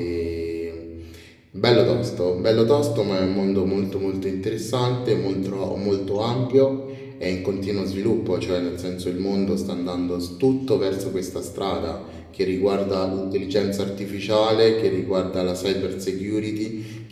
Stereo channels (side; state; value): both; identical; correlation 1.00